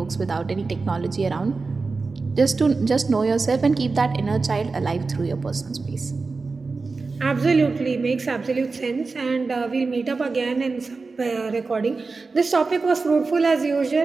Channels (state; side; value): quieter; left; 4.1 dB